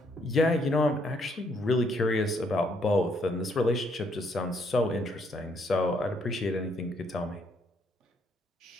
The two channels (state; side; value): normal; both; correlation 0.70